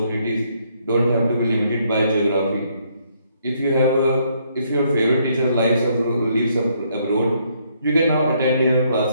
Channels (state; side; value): inverted; both; correlation -0.70